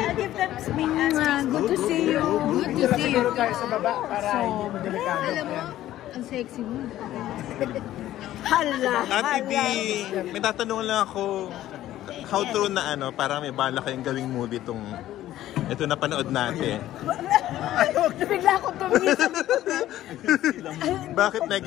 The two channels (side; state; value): right; quieter; 13.7 dB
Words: give them some good to see you. Good to see you. tayo sa baba para hindi mo delikado. Alam mo, ang sexy mo. Hala, Ate D! hala. May tatanong lang ako. How true na parang may bala kayong gawing movie itong ito na panood natin. Bigla akong tumisip. Bakit may